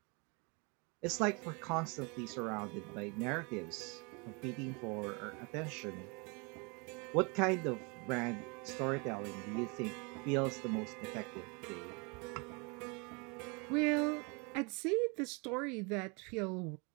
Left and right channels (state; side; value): quieter; left; 31.2 dB